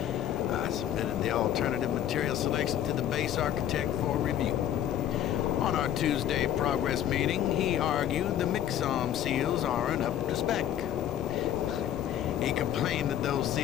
I submitted the alternative material selection to the base architect for review. On our Tuesday progress meeting, he argued the Mixom seals aren't up to spec. He complained that those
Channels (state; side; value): quieter; right; 10.9 dB